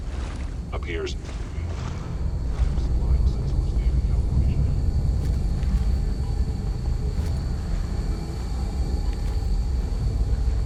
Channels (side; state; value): both; identical; correlation 1.00